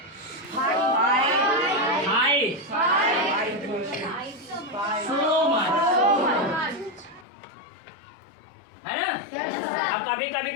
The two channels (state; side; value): drops out; right; at 7.2 s